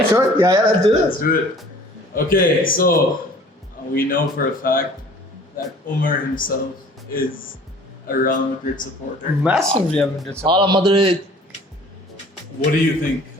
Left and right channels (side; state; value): both; normal; correlation 0.50